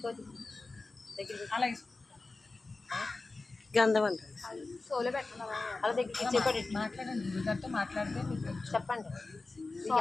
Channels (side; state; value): right; quieter; 3.5 dB